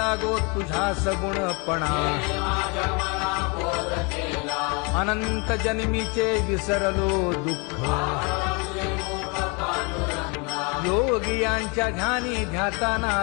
तुझा सगुणपणा अनंत जन्मीचे विसरलो दुःख योगियांच्या ध्यानी ध्याताना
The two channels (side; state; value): right; quieter; 31.3 dB